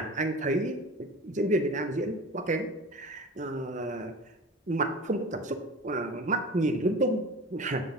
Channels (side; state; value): both; normal; correlation 0.36